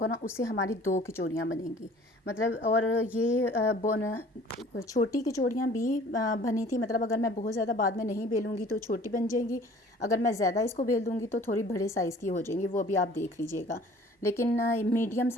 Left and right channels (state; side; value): normal; both; correlation 0.50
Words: ना, उससे हमारी 2 कचौरियाँ बनेंगी। मतलब और ये छोटी कचौरियाँ भी बनी थी। मतलब अगर मैं बहुत ज़्यादा बाद में नहीं बेलूँगी तो छोटी बन जाएंगी, अगर मैं ज़्यादा इसको बेल दूँगी तो थोड़ी बड़े साइज़ की हो जाएंगी, वो भी आप देख लीजिएगा। लेकिन मीडियम